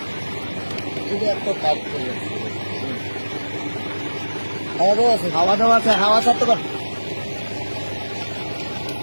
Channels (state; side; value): inverted; both; correlation -1.00